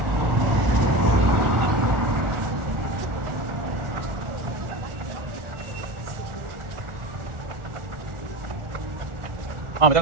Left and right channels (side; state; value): left; late; 1.4 ms